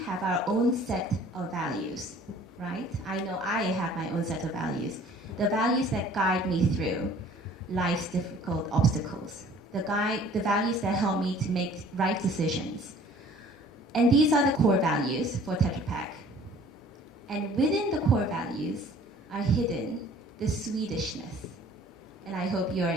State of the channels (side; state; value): both; normal; correlation 0.52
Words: have our own set of values, right? I know I have my own set of values. The values that guide me through life's difficult obstacles. The values that help me to make right decisions. And these are the core values for Tetra Pak. And within the core values are hidden the Swedishness. And I hope you are